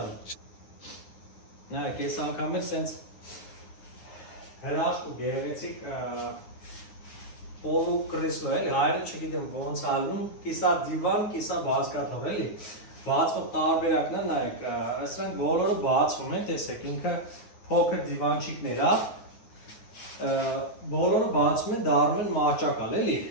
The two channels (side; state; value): right; late; 9.6 ms